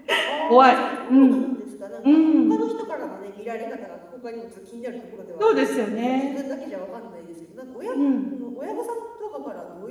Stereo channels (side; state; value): both; identical; correlation 1.00